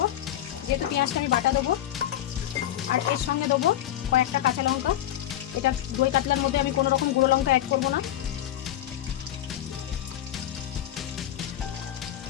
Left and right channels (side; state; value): right; quieter; 12.4 dB